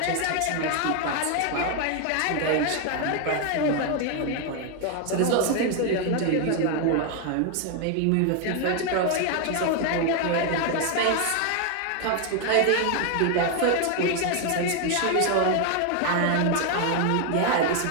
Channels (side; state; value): both; different; correlation 0.01